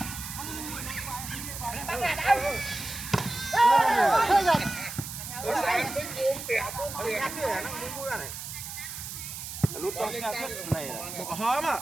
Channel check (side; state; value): right; noise; hiss, 8 dB below the sound